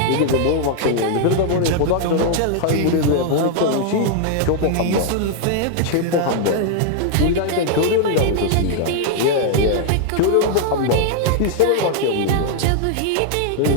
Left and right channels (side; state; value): both; different; correlation 0.00